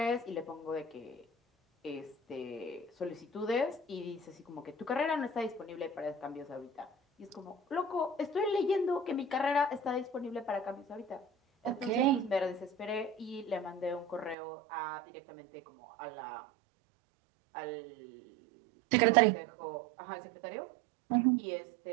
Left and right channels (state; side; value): drops out; left; at 14.4 s